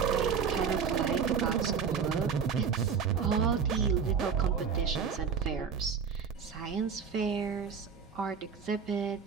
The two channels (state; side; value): quieter; left; 6.4 dB